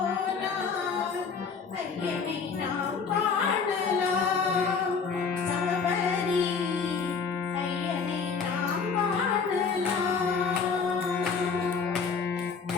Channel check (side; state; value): right; quieter; 5.5 dB